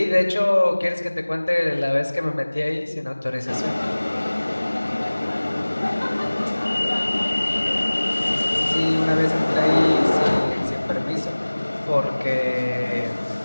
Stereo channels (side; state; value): both; inverted; correlation -1.00